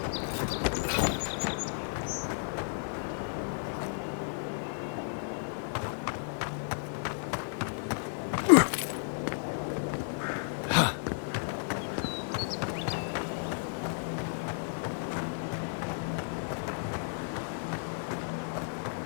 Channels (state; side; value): silent; right; digital silence